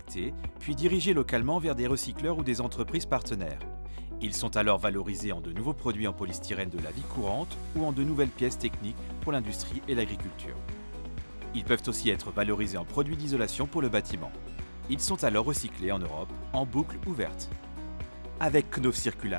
puis dirigés localement vers des recycleurs ou des entreprises partenaires. Ils sont alors valorisés en de nouveaux produits en polystyrène de la vie courante ou en de nouvelles pièces techniques pour l'industrie et l'agriculture. Ils peuvent aussi être valorisés en produits d'isolation pour le bâtiment. Ils sont alors recyclés en Europe en boucle ouverte. Avec Knauf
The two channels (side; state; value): both; inverted; correlation -1.00